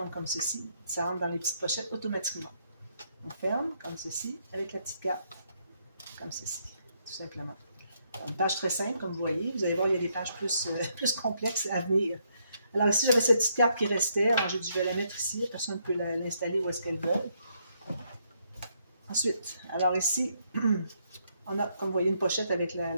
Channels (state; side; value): inverted; both; correlation -0.74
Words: comme ceci. Ça rentre dans les petites pochettes automatiquement. On ferme comme ceci, avec la petite carte, comme ceci, tout simplement. Alors, une page très simple, comme vous voyez. Vous allez voir, il y a des pages plus complexes à venir. Alors ici, j'avais cette petite carte qui restait. Alors j'ai dit, je vais la mettre ici. La personne peut l'installer où est-ce qu'elle veut. Ensuite, alors ici, on a, comme vous voyez, une pochette avec